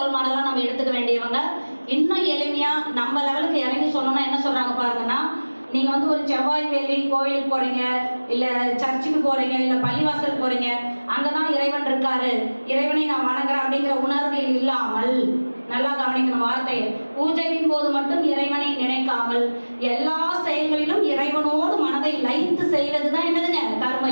மாடலா நம்ம எடுத்துக்க வேண்டியவங்க. இன்னும் எளிமையா நம்ம லெவலுக்கு இறங்கி சொல்லணும்னா என்ன சொல்றாங்க பாருங்கன்னா, நீங்க ஒரு செவ்வாய் வெள்ளி கோயிலுக்கு போறீங்க, இல்ல சர்ச்சுக்கு போறீங்க, இல்ல பள்ளிவாசல் போறீங்க, அங்கதான் இறைவன் இருக்காரு, இறைவனை நான் வணங்குறேன் அப்படிங்கிற உணர்வில் இல்லாமல், நல்லா கவனிக்கணும் வார்த்தையை, பூஜையின் போது மட்டும் இறைவனை நினைக்காமல் எல்லா செயல்களிலும் இறைவனோடு மனதை லயித்து செய்வதுதான் என்னதுங்க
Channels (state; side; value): inverted; both; correlation -1.00